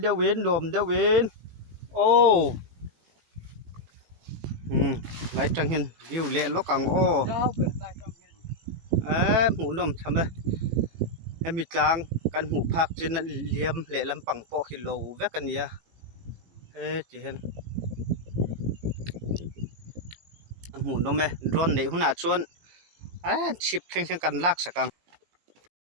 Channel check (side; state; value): left; late; 17 ms